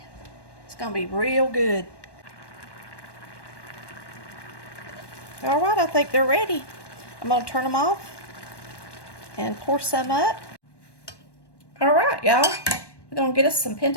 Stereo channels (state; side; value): late; right; 1.1 ms